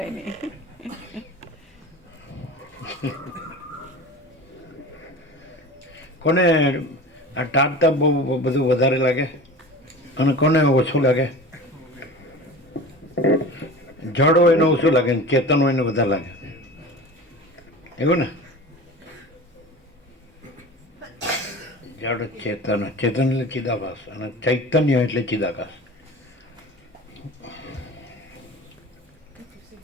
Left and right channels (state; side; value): normal; both; correlation 0.35